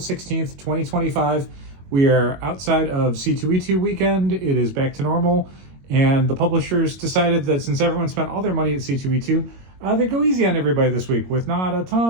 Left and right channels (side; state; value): left; late; 22 ms